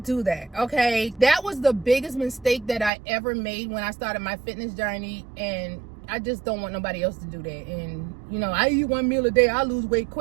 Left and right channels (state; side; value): drops out; left; at 2.9 s